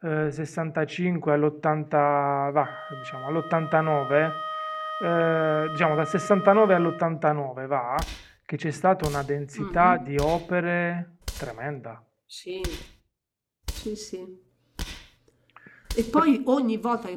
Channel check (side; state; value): both; identical; correlation 1.00